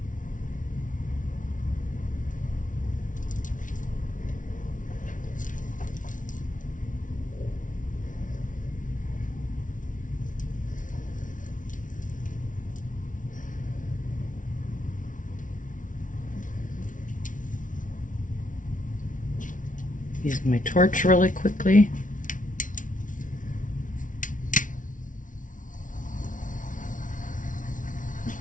Use my torch really quickly.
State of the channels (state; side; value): late; right; 0.38 ms